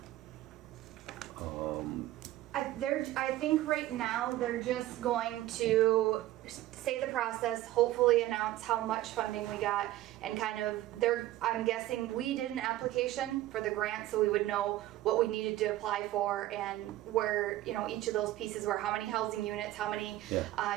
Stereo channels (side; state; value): left; quieter; 15.2 dB